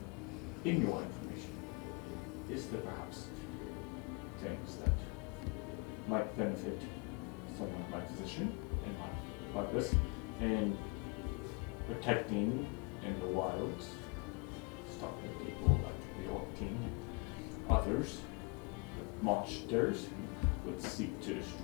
to. In your information, is there perhaps things that might benefit someone in my position, in my purpose, in protecting in the wilds, stopping people like the Orc King and others, monsters who would seek to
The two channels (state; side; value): quieter; right; 30.1 dB